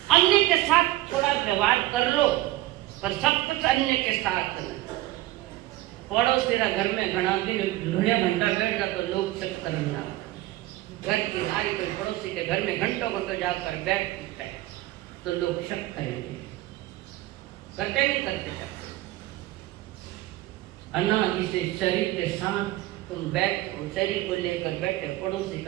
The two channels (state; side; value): quieter; left; 16.9 dB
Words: अन्य के साथ थोड़ा व्यवहार कर लो, पर सब कुछ अन्य के साथ नहीं। पड़ोसी घर में घना दिन घड़िया घंटा बैठ जाता तो लोग शक करना, घर की नारी कोई पड़ोसी के घर में घंटों घंटों जाकर बैठता है तो लोग शक करेंगे, करते नहीं करते। अनादि से शरीर के साथ तुम बैठो, शरीर को लेकर बैठे पड़ोसी